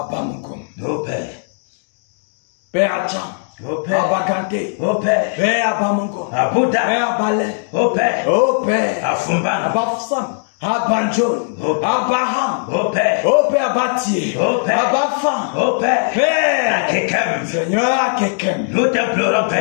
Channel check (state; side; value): silent; right; digital silence